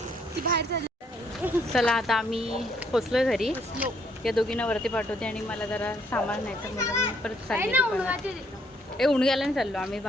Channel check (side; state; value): both; normal; correlation 0.69